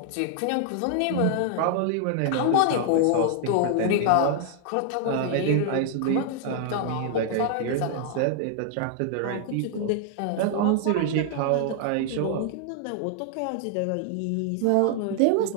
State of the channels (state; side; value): different; both; correlation -0.01